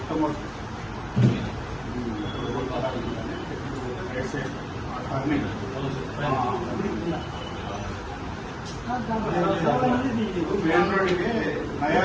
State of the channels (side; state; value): both; identical; correlation 1.00